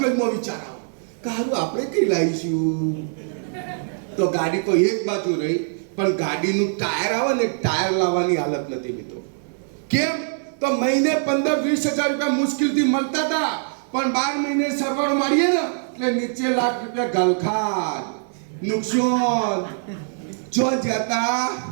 વિચાર આવે કે હારું આપણે કઈ લાવીશું. તો ગાડી તો એક બાજુ રહી, પણ ગાડીનું ટાયર આવે ને, ટાયર લાવવાની હાલત નથી મિત્રો. કેમ? તો મહિને 15-20 હજાર રૂપિયા મુશ્કેલથી મળતા હતા, પણ 12 મહિને સરવાળો મારીએ ને એટલે નીચે લાખ રૂપિયા ગલખાન નુકસાન. જો જતા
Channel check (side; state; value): left; silent; digital silence